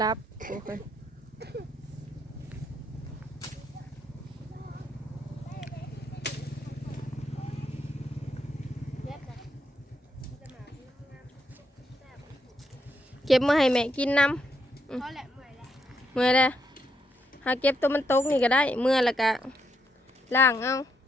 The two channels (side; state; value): both; normal; correlation 0.78